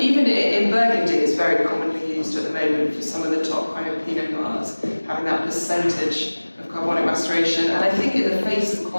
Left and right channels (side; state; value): both; inverted; correlation -1.00